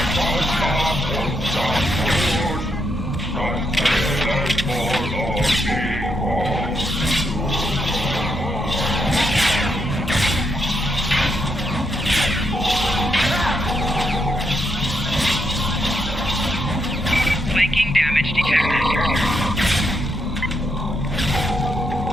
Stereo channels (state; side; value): normal; both; correlation 0.80